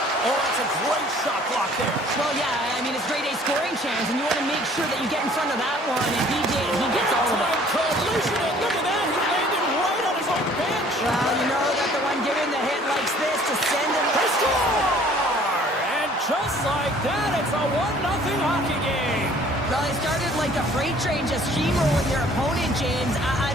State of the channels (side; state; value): both; normal; correlation 0.55